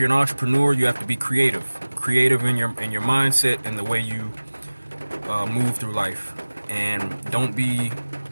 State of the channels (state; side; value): inverted; both; correlation -1.00